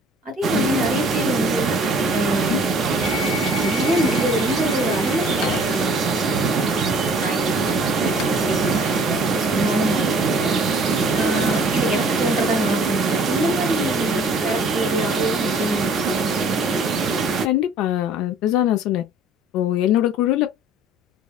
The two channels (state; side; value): normal; both; correlation 0.52